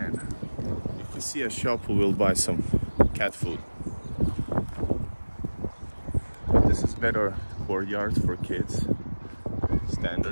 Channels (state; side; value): inverted; both; correlation -1.00